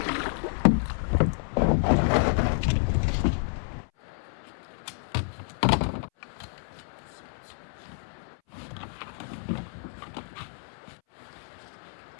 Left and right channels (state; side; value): silent; right; 58 dB below the other